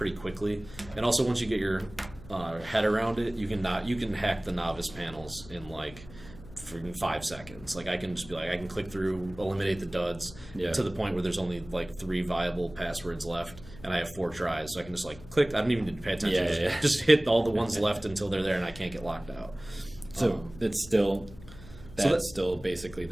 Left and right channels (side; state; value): left; noise; hum, 18 dB below the sound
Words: quickly, and also once you get your head around it, you can hack the novice panels in like freaking 5 seconds. Like, I can just be like, I can click through, eliminate the duds Yeah. to the point where there's only like 3 viable passwords left, and I have 4 tries, so I can just like click. I don't even need to pay attention. Yeah, Just hit all the ones left until they're there, and I can't get locked out. So it's still that's that's- still basically